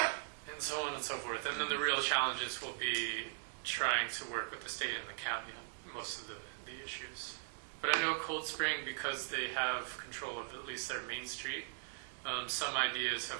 And so on and so forth. And then the real challenges will be trying to work with the state and the county on most of the issues. But I know Cold Spring, because they have control of at least their main street, some ideas have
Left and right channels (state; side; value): silent; left; digital silence